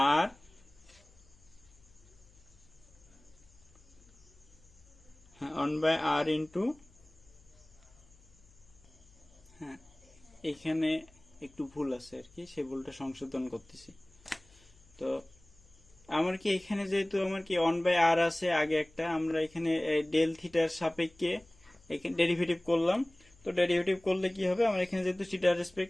ইন্টু, হ্যাঁ এখানে একটু ভুল আছে আর কি, সেই ভুলটা সংশোধন করতেছি। তো আমার কি এখানে যেহেতু আমার কি 1/r আছে আগে একটা, আমরা এখানে ডেল থিটার সাপেক্ষে এখানে ডেরিভেটিভ করলাম। তো ডেরিভেটিভ করলে কি হবে, আমার এখানে যেহেতু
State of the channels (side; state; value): left; noise; hum, 28 dB below the sound